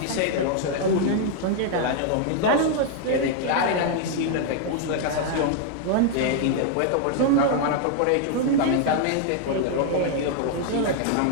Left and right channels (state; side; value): different; both; correlation 0.00